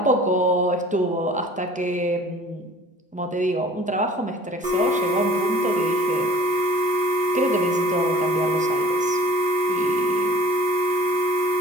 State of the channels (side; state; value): both; normal; correlation 0.48